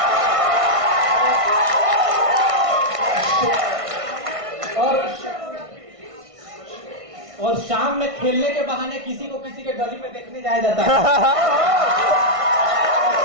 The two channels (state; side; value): late; left; 1.6 ms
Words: और शाम में खेलने के बहाने किसी को किसी के गली में देखने जाया जाता है।